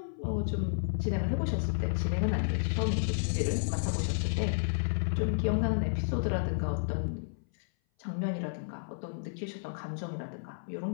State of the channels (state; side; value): silent; right; 57 dB below the other